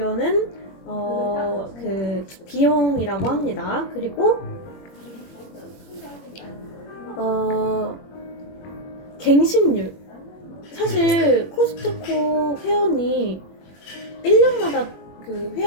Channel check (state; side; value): late; right; 21 ms